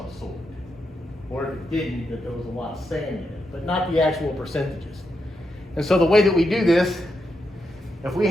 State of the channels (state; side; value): normal; both; correlation 0.84